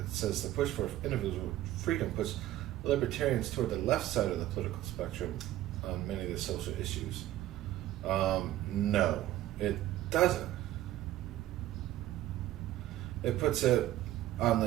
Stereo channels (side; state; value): left; quieter; 14.2 dB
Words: says the push for individual freedom puts libertarians toward the left side of the political spectrum on many of the social issues. No, it doesn't. It puts it on